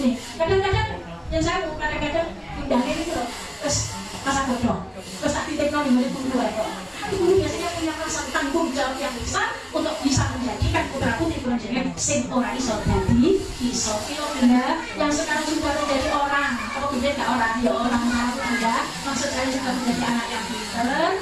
Kadang-kadang yang saya kadang-kadang pindahnya itu loh, terus masa bodoh, terus tak titipno ning guru kok. Guru biasanya punya rasa tanggung jawab yang besar untuk bisa menjadikan putra putri kula jenengan sing ora iso dadi iso. Kilo Bunda yang sekarang sudah menjadi orang, apa beda enggak orang ya orang baru Bunda, maksud saya sudah menjadi anak yang pinter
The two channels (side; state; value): both; identical; correlation 1.00